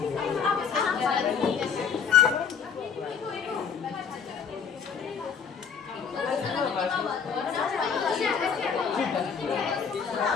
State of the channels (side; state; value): right; quieter; 6.6 dB